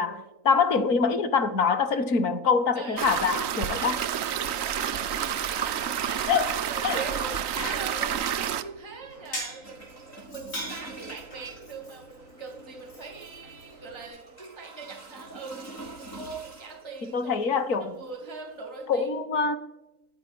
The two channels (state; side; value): late; right; 3.9 ms